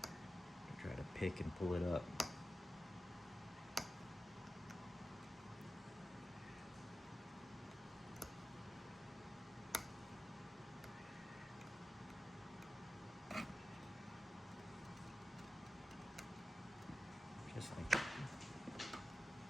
to try to pick and pull it up. Just like that.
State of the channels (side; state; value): both; normal; correlation 0.93